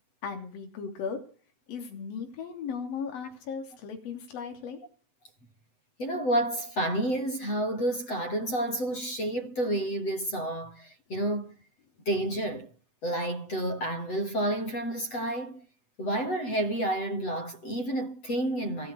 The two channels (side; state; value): right; late; 8.0 ms